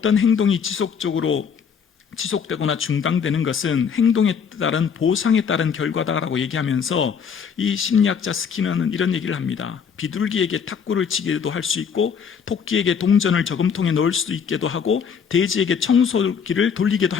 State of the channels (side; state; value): right; quieter; 6.8 dB